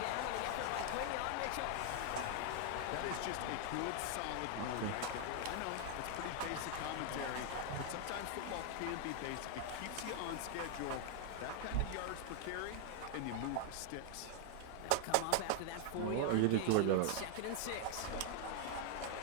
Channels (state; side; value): different; both; correlation 0.00